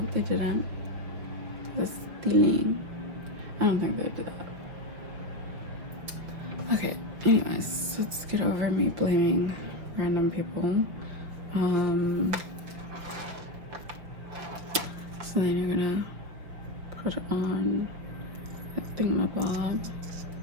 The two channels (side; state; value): left; late; 5.8 ms